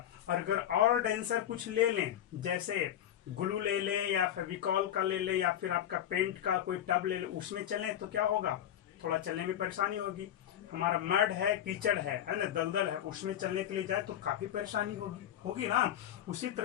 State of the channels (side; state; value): right; quieter; 11.0 dB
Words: और अगर और डेंसर कुछ ले लें, जैसे ग्लू ले लें या फेविकॉल का ले लें या फिर आपका पेंट का कोई टब ले लें, उसमें चलें तो क्या होगा, थोड़ा चलने में परेशानी होगी. हमारा मड है, कीचड़ है ना, दलदल है, उसमें चलने के लिए जाए तो काफी परेशानी होगी ना. उसी